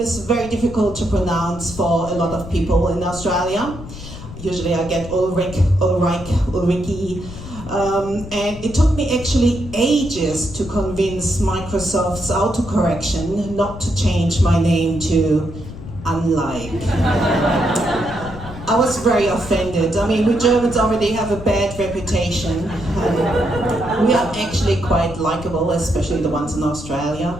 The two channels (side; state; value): left; noise; rumble, 13 dB below the sound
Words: is very difficult to pronounce for a lot of people in Australia. Usually I get Ulrike, Ulrike. And it took me actually ages to convince Microsoft's autocorrection not to change my name to unlike. I was very offended. I mean, we Germans already have a bad reputation. We are actually quite likable, especially the ones in Australia.